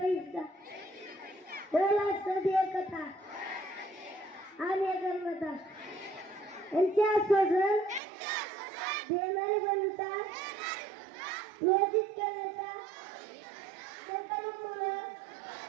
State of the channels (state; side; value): drops out; left; at 8.0 s